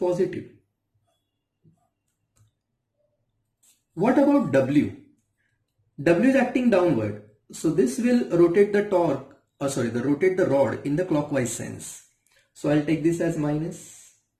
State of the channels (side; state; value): both; identical; correlation 1.00